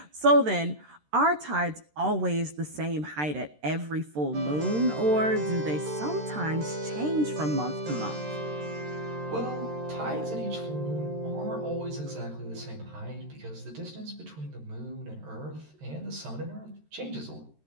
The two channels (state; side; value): late; left; 13 ms